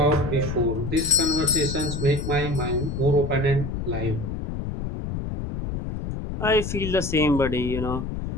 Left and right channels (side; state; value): left; noise; rumble, 5 dB below the sound